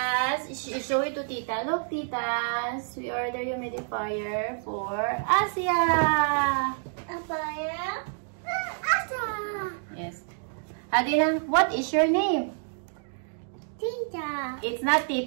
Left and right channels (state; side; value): silent; left; digital silence